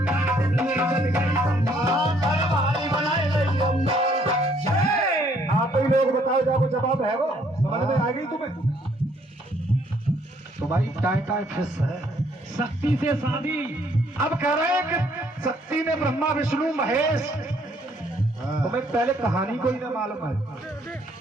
आप ही लोग बताओ, जाओ जवाब है वो समझ में आ गई तुम्हें? तो भाई टाइम फिक्स है। शक्ति से शादी। अब कह रहे हैं कि शक्ति ने ब्रह्मा विष्णु महेश, तुम्हें पहले कहानी को ही ना मालूम है।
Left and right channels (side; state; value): both; normal; correlation 0.66